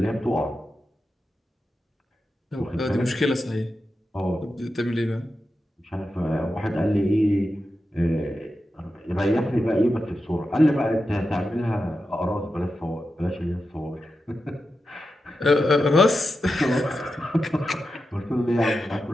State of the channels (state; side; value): normal; both; correlation 0.90